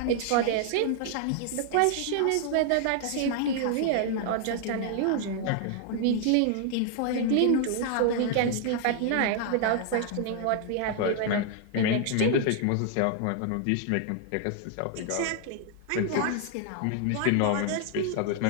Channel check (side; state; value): both; different; correlation 0.00